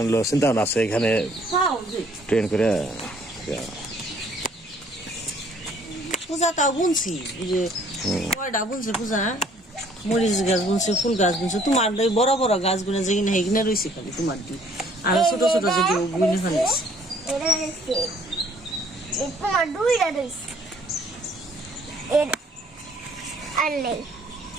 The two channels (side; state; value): both; normal; correlation 0.60